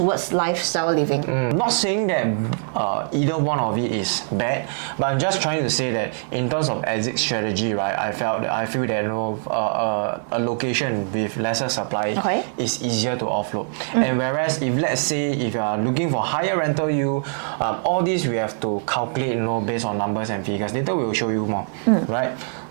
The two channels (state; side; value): silent; left; digital silence